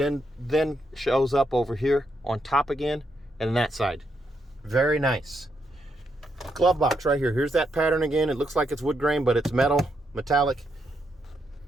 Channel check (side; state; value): both; normal; correlation 0.79